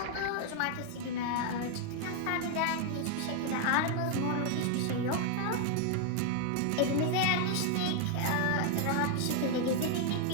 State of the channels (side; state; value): both; different; correlation 0.00